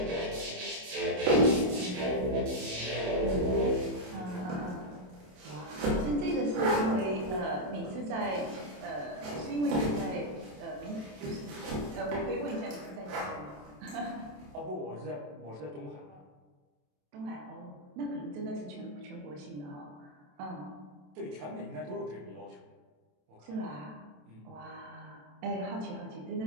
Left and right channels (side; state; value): left; late; 27 ms